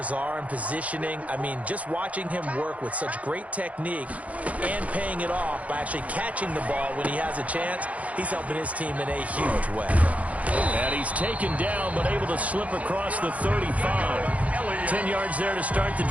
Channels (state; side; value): late; left; 0.067 ms